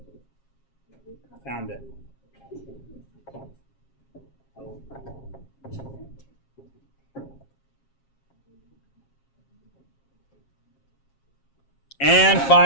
Found it. And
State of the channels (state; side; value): late; right; 7.4 ms